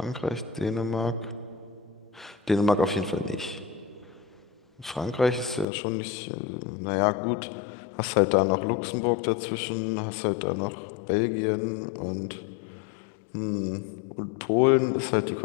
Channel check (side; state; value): right; drops out; at 5.7 s